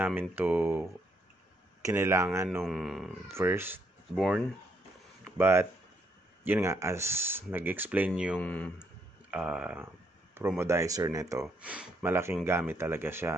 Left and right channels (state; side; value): normal; both; correlation 0.73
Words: to kinailangan nung first born. But, yun nga, as nag-explain yung promodizer nito, malaking gamit talaga